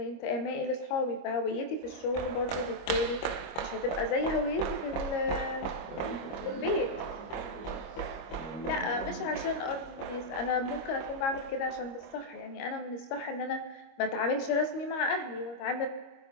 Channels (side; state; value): right; late; 25 ms